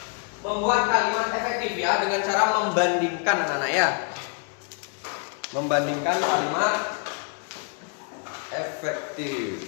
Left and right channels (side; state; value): right; quieter; 38.1 dB